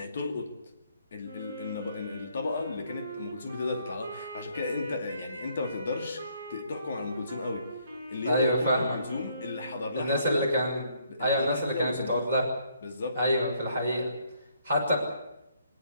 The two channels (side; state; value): both; inverted; correlation -0.68